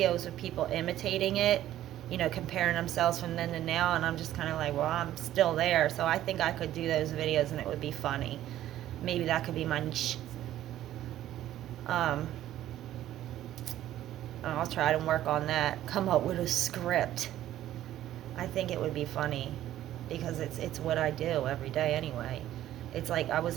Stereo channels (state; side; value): quieter; left; 13.0 dB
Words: of people imitating it, comparing themselves from then to now, and I'm just kind of like, well, I'm still there. So I think I could do those videos and it would be funny. Maybe that could be my niche. I'll try to work on that, come up with a script. I think it would be funny because it's what I do every day anyway. It's like I was